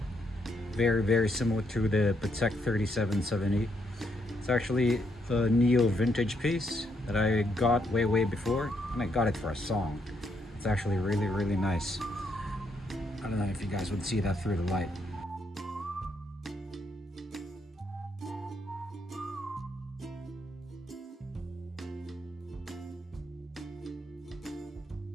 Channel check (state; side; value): normal; both; correlation 0.76